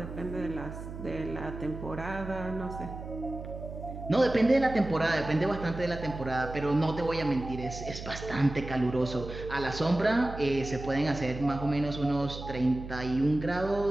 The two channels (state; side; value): noise; right; hum, 10 dB below the sound